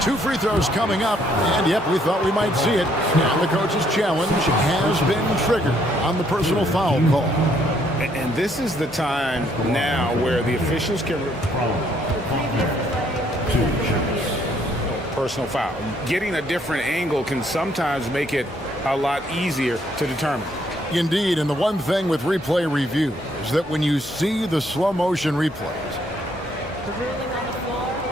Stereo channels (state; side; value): normal; both; correlation 0.68